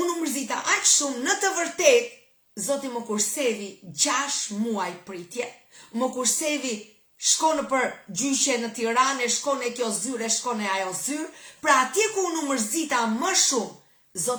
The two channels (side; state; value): both; identical; correlation 1.00